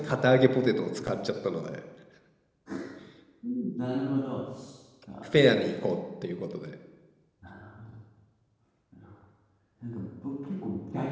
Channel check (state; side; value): identical; both; correlation 1.00